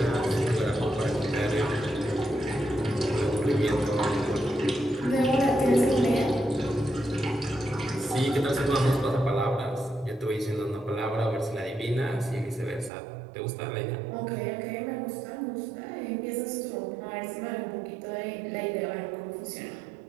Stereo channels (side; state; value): left; drops out; at 12.9 s